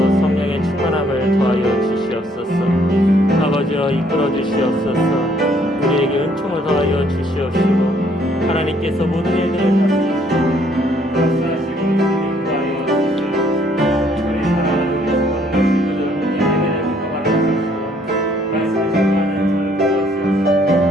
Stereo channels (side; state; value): both; normal; correlation 0.65